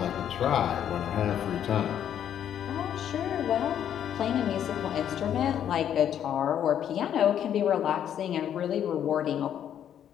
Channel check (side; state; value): right; quieter; 9.8 dB